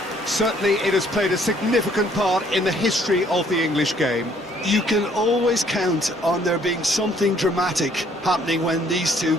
Certainly it has played a significant part in the history of the English game. You can always count on there being something dramatic happening when these two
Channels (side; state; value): both; normal; correlation 0.63